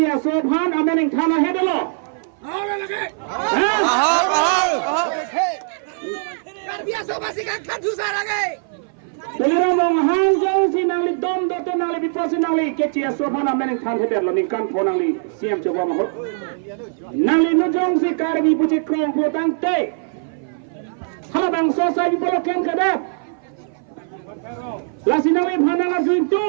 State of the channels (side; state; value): left; silent; 58 dB below the other